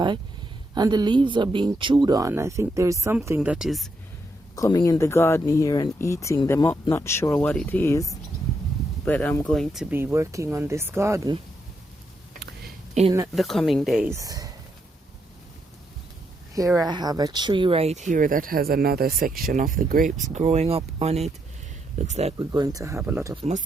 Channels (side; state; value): both; normal; correlation 0.79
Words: and the leaves are being chewed on. I think there's something that is coming in the garden here and eating them up. Not sure what it is, but I'm going to be working on this garden in the coming days. Here I have a tree right here that has another section of the grapes growing up on it. Looks like we're going to have a lot of